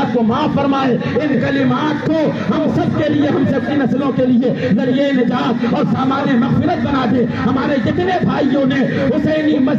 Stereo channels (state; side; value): identical; both; correlation 1.00